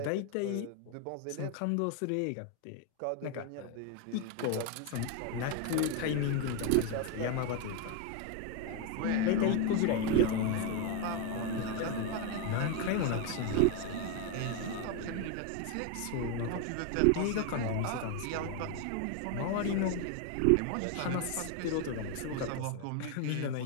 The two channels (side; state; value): both; different; correlation 0.01